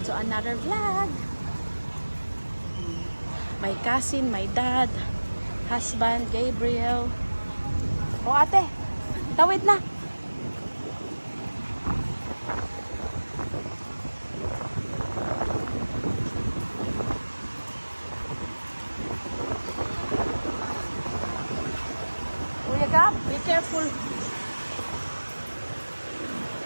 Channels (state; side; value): inverted; both; correlation -1.00